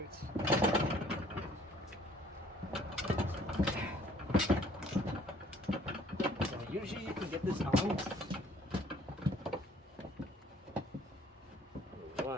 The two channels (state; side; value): normal; both; correlation 0.58